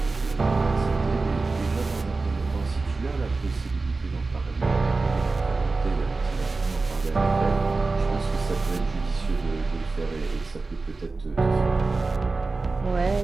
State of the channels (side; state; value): left; quieter; 3.7 dB